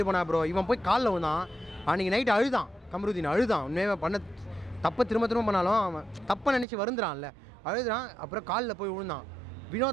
போனா ப்ரோ. இவன் போய் காலில் விழுந்தான். அன்றைக்கி நைட்டு அழுதான், கமருதீன் அழுதான். உண்மையாக பண்ண தப்பை திரும்ப பண்ணாலும் அவன் தப்பை நினச்சி வருந்துறான்ல, அழுதுறான். அப்புறம் காலில் போய் விழுந்தான்.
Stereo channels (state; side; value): drops out; left; at 6.7 s